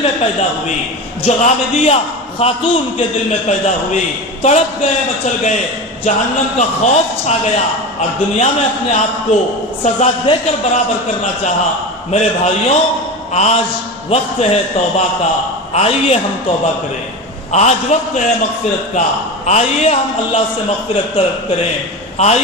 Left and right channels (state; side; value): normal; both; correlation 0.25